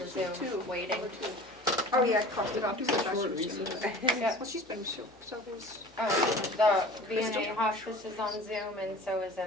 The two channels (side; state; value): both; normal; correlation 0.41